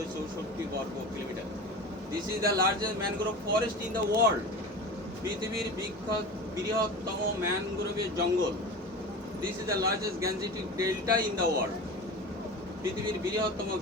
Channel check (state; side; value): normal; both; correlation 0.32